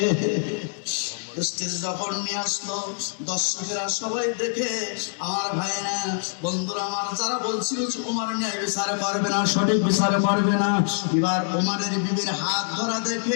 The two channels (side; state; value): right; silent; digital silence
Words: যখন নিয়ে আসলো দর্শকেরা সবাই দেখে, আমার ভাইরা বন্ধুরা আমার যারা বলছিল ওমর ন্যায় বিচার করবে না, সঠিক বিচার করবে না, এবার ওমরের বিবির হাত ধরা